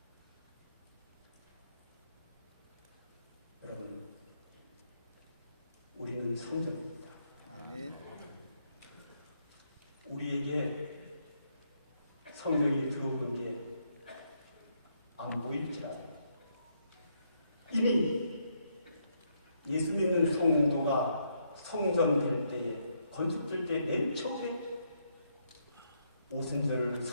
여러분, 우리는 성전입니다. 우리에게 성령이 들어오는 게 안 보일지라도 이미 예수 믿는 성도가 성전 될 때에, 건축될 때 맨 처음에 오순절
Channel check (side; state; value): both; inverted; correlation -0.76